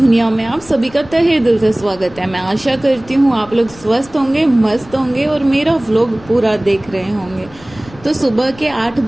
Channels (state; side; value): noise; left; rumble, 22 dB below the sound